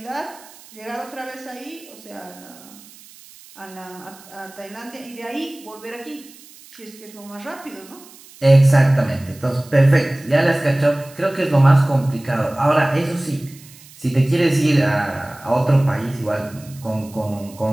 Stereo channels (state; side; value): noise; right; hiss, 22 dB below the sound